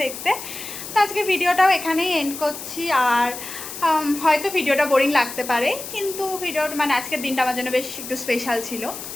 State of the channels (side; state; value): left; noise; hiss, 10 dB below the sound